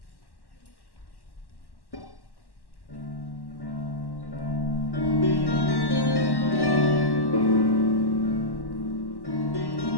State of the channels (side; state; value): right; late; 1.1 ms